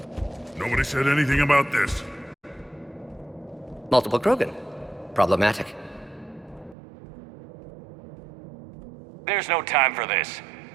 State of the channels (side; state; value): left; drops out; at 6.8 s